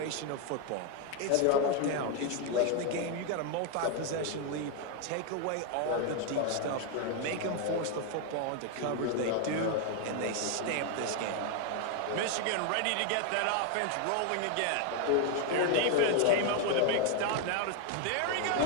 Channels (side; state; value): both; different; correlation 0.01